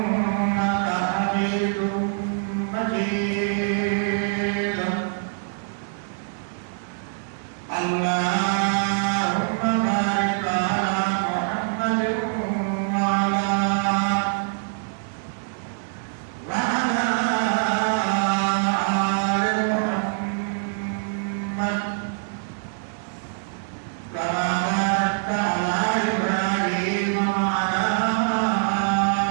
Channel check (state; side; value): silent; left; digital silence